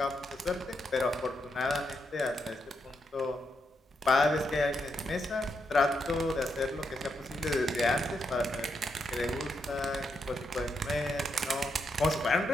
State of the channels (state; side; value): normal; both; correlation 0.81